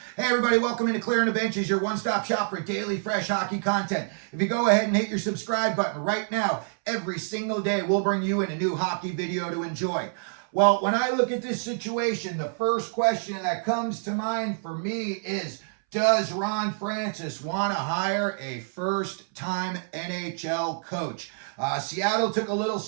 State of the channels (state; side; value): silent; left; 60 dB below the other